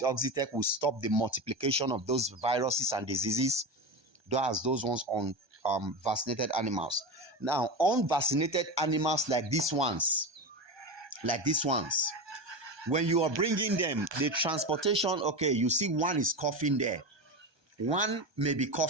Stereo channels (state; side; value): late; left; 1.2 ms